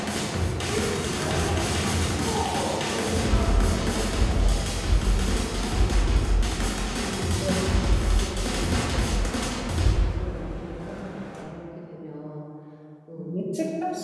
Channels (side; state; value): both; identical; correlation 1.00